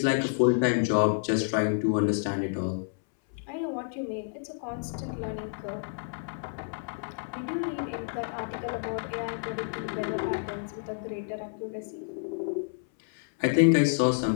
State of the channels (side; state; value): right; silent; 58 dB below the other